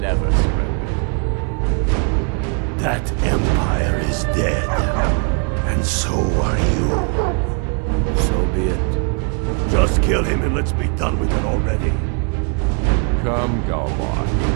surrendered. That Empire is dead. And so are you. So be it. Just kill him and let's be done with it already. Come, Galvar.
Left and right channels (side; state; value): left; quieter; 37.7 dB